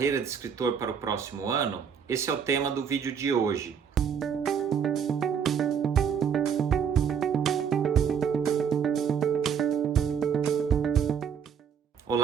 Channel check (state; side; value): quieter; left; 7.4 dB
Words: de escritor para o próximo ano? Esse é o tema do vídeo de hoje.